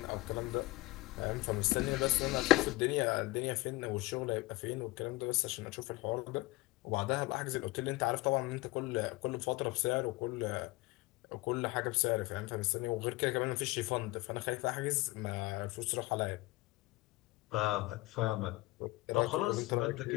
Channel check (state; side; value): quieter; right; 21.0 dB